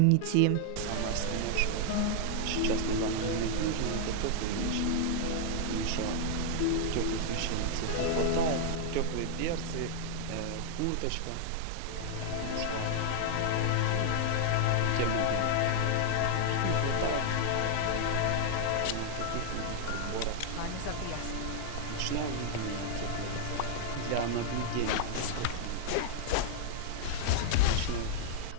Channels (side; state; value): both; different; correlation 0.00